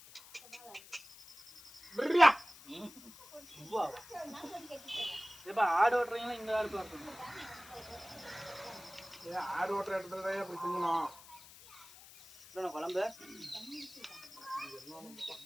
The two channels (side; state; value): left; noise; hiss, 19 dB below the sound